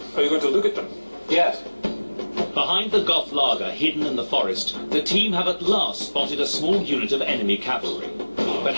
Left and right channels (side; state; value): both; inverted; correlation -1.00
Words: Are you going to look at them? Yes. Behind the Goth laager hidden in the forest, the team have at last spotted a small unit of enemy cavalry. But